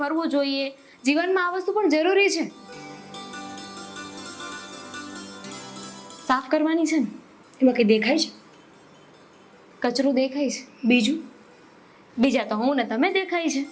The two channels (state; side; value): identical; both; correlation 1.00